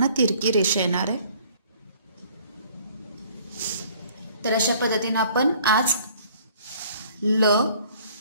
तिरकी रेषा येणार आहे. तर अशा पद्धतीने आपण आज ल,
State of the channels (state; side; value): inverted; both; correlation -0.56